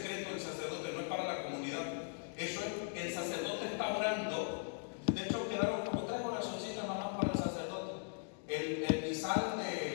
del sacerdote, no es para la comunidad. Eso es, el sacerdote está orando. De hecho, quedaron como 3 oracioncitas nada más para el sacerdote. El misal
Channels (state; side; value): silent; right; 52 dB below the other